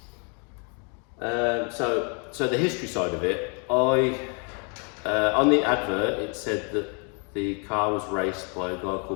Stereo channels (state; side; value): quieter; right; 36.5 dB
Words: So the history side of it, on the advert it said that the car was raced by a guy